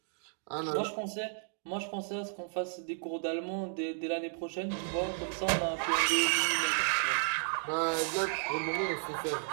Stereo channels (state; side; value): silent; left; 56 dB below the other